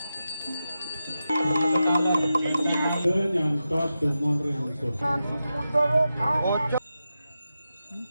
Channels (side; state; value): both; inverted; correlation -0.91